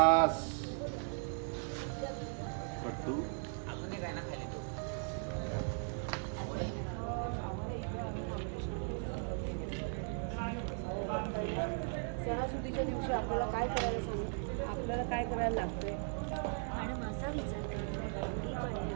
कट्टू सणासुदीच्या दिवशी आपल्याला काय करायला सांगू आपल्याला काय करायला लागतंय मॅडम असा विचार करा गुढी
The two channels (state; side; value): silent; left; 53 dB below the other